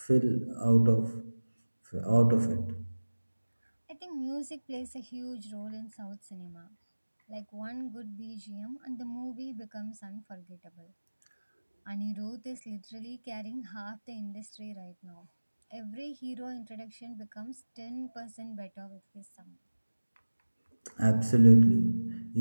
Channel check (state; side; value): inverted; both; correlation -1.00